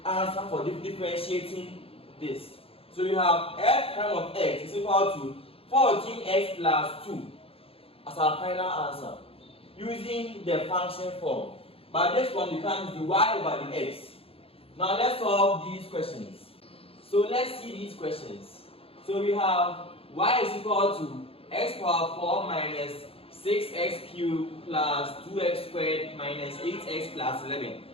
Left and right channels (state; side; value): late; right; 0.27 ms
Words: answer for differentiating this. So you have f prime of x is equal to 14x plus 2 as our final answer using the function form. But this one becomes the y over the x. Now let's solve these questions. So let's see these questions. So we have y is equal to x power 4 minus 6x cubed plus 2x squared minus 8x plus 11.